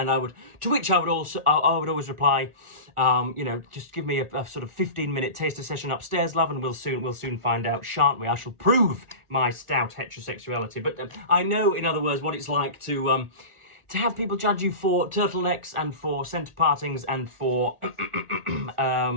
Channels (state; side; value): late; left; 1.4 ms